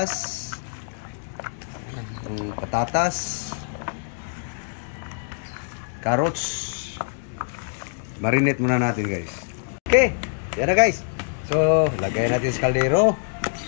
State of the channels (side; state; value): right; silent; digital silence